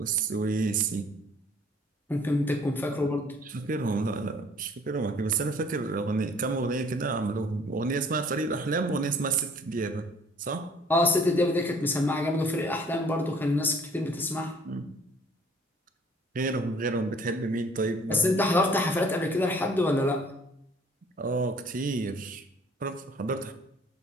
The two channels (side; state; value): both; normal; correlation 0.56